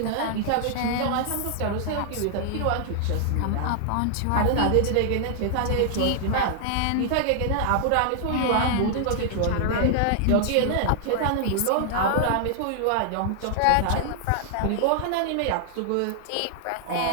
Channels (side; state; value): both; different; correlation -0.01